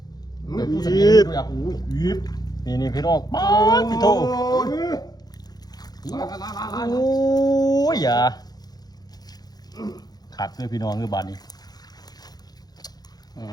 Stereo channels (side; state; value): right; late; 0.19 ms